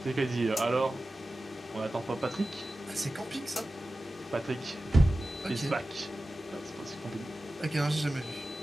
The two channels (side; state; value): both; normal; correlation 0.94